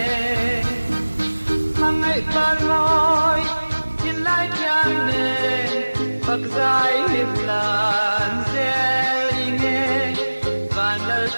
mang ngày ban môi thiên lai thiang nề Phật giải hiệp lan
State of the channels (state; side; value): inverted; both; correlation -1.00